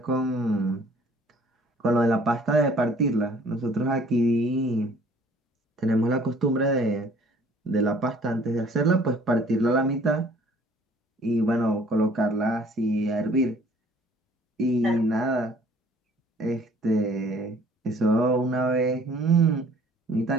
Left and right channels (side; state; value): both; normal; correlation 0.55